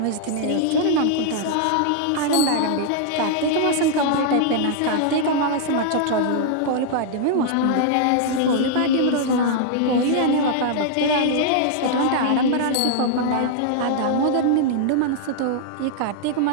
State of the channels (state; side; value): different; both; correlation -0.01